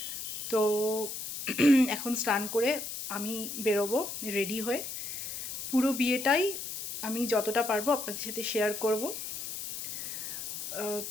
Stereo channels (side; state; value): left; noise; hiss, 6 dB below the sound